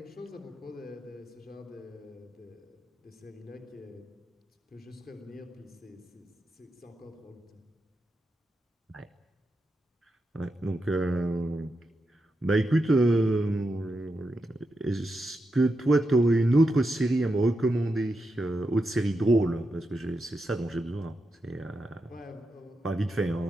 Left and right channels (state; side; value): normal; both; correlation 0.87